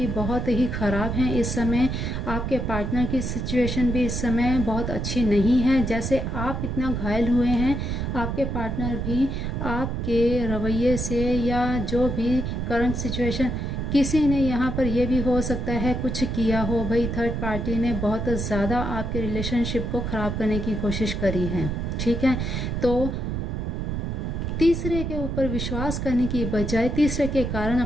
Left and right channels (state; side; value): noise; right; rumble, 2 dB below the sound